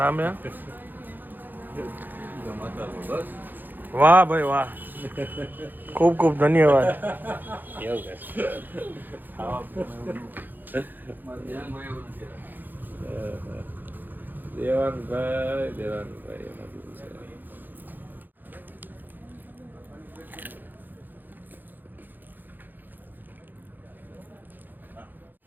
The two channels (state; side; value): late; left; 0.088 ms